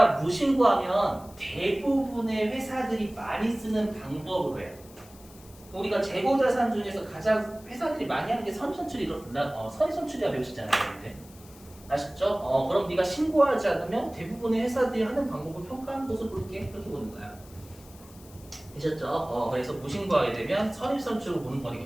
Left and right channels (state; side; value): noise; left; hiss, 23 dB below the sound